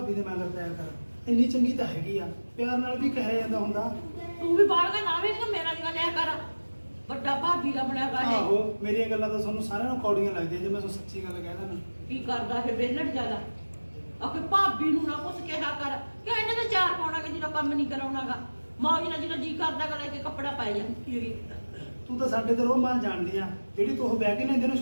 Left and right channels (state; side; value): inverted; both; correlation -1.00